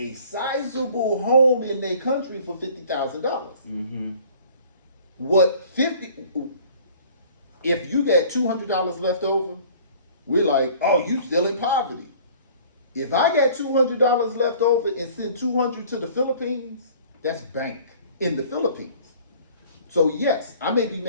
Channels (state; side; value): inverted; both; correlation -0.51